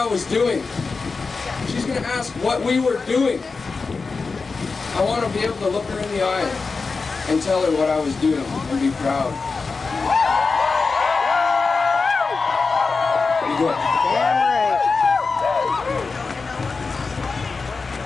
was doing. She's going to ask what we were doing. I want to be able to look her in the eye and tell her what I was doing and be proud. Be good.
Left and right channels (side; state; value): right; quieter; 4.4 dB